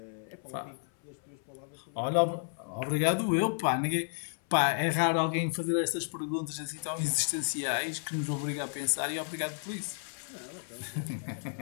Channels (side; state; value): right; silent; 56 dB below the other